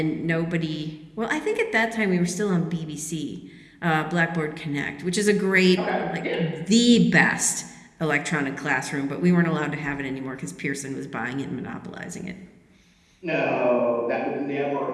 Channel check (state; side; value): identical; both; correlation 1.00